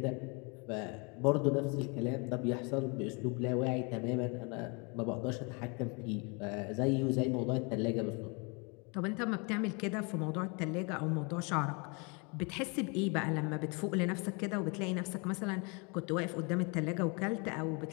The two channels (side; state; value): right; quieter; 31.9 dB